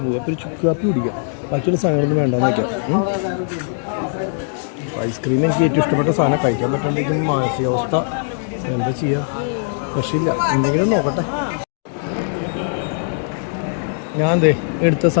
പോകും. അപ്പോൾ ഒരു ചുക്ക് കാപ്പി കുടിക്കാം. ബാക്കിയുള്ള സാധനങ്ങളൊന്നും വേണ്ടാന്ന് വയ്ക്കാം. ഐസ്ക്രീം എനിക്ക് ഏറ്റവും ഇഷ്ടപ്പെട്ട സാധനം. കഴിക്കാൻ പറ്റാണ്ടിരിക്കുന്ന മാനസികാവസ്ഥ എന്താ ചെയ്യുക? രക്ഷയില്ല. എന്തെങ്കിലും നോക്കട്ടെ. ഞാൻ എടുത്ത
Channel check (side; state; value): right; silent; digital silence